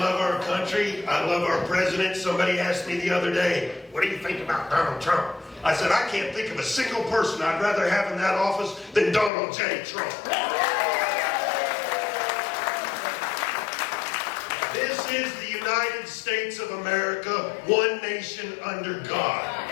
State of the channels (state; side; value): drops out; right; at 9.3 s